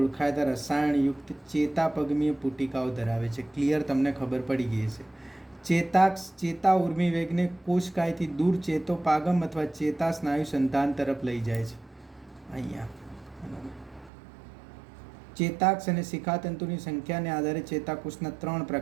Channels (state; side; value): drops out; left; at 14.1 s